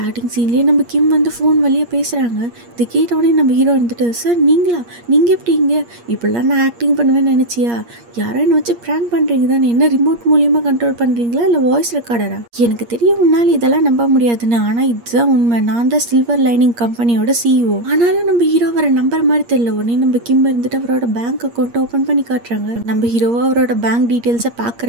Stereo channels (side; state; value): left; late; 8.5 ms